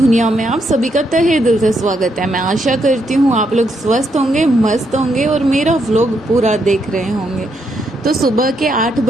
में आप सभी का तहे दिल से स्वागत है। मैं आशा करती हूँ आप लोग स्वस्थ होंगे, मस्त होंगे और मेरा व्लॉग पूरा देख रहे होंगे। तो सुबह के 8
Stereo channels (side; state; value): both; normal; correlation 0.77